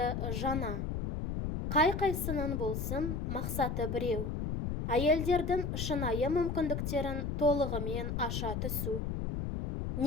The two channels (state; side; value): noise; left; rumble, 2 dB below the sound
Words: жаңа. Қай-қайсының болсын, мақсаты біреу. Әйелдердің шынайы мүмкіндіктерін толығымен аша түсу.